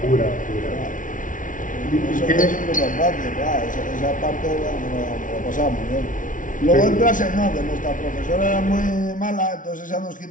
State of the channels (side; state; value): right; late; 0.38 ms